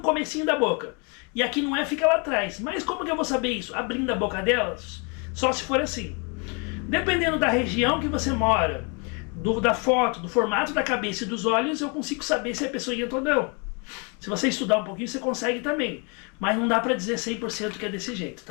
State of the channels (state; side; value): quieter; right; 34.2 dB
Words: comecinho da boca. E aqui não é, fica lá atrás. Mas como que eu vou saber isso? Abrindo a boca delas? Só se for assim. Dependendo da região que você mora, da foto, do formato da cabeça e dos olhos, eu consigo saber se é peçonhenta ou não. Se você estudar um pouquinho, você consegue também. Mas não dá pra dizer 100% que é desse jeito,